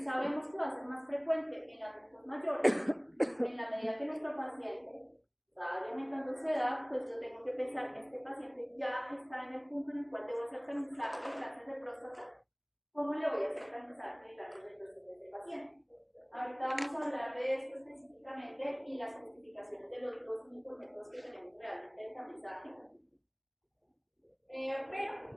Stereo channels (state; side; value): identical; both; correlation 1.00